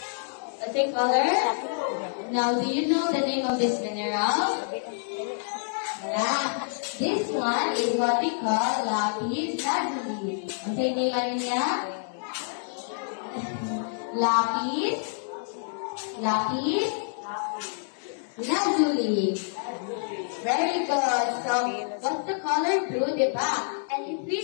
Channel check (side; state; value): right; silent; 60 dB below the other